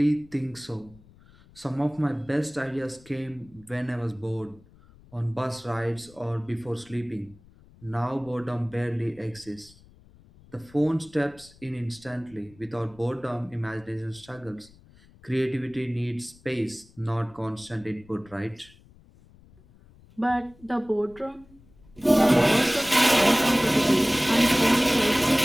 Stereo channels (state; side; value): noise; left; rumble, 26 dB below the sound